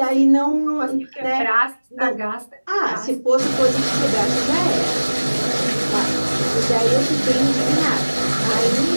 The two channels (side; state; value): both; inverted; correlation -1.00